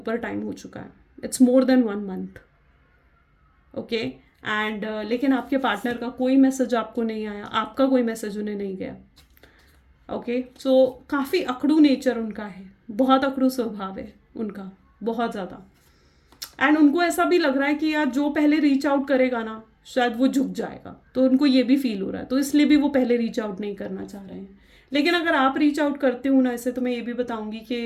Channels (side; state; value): both; identical; correlation 1.00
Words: टाइम हो चुका है। It's more than 1 month, okay. And लेकिन आपके पार्टनर का कोई मैसेज आपको नहीं आया, आपका कोई मैसेज उन्हें नहीं गया, ओके। सो काफ़ी अकड़ू नेचर उनका है, बहुत अकड़ू स्वभाव है उनका, बहुत ज़्यादा। एंड उनको ऐसा भी लग रहा है कि यार जो पहले रीच आउट करेगा ना शायद वो झुक जाएगा, तो उनको ये भी फील हो रहा है, तो इसलिए भी वो पहले रीच आउट नहीं करना चाह रहे हैं। लेकिन अगर आप रीच आउट करते हो ना ऐसे, तो मैं ये भी बताऊंगी